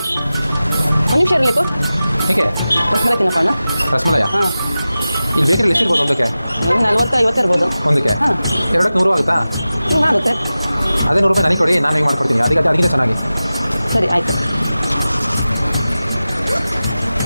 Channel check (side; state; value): both; inverted; correlation -0.95